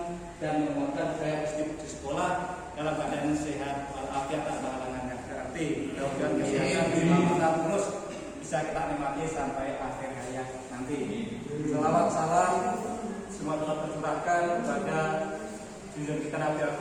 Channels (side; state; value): both; identical; correlation 1.00